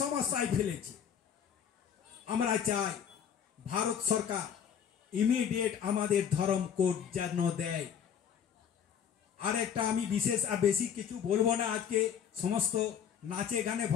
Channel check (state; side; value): quieter; right; 8.2 dB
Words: সমস্যায় ফেলেছে। আমরা চাই ভারত সরকার ইমিডিয়েট আমাদের ধর্ম কোড যেন দেয়। আর একটা আমি বিশেষ আর বেশি কিছু বলবো না, আজকে সমস্ত নাচে গানে